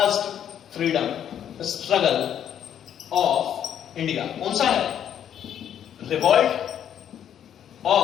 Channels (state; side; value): quieter; right; 9.7 dB